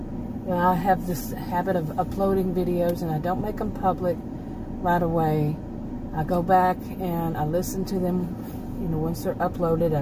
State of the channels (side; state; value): both; identical; correlation 1.00